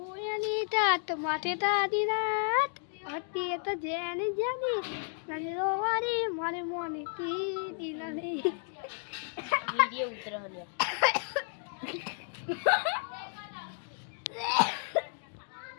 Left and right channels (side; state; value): right; silent; 56 dB below the other